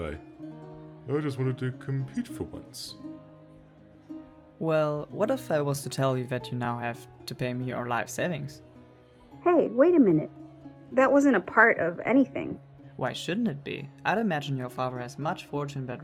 I just wanted to compete for once. Well, what if I was to tell you that you now have to pay me your life savings? Hey, wait a minute. That wasn't a part of anything. Why shouldn't it be? I'd imagine your father has much fortune that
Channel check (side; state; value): both; identical; correlation 1.00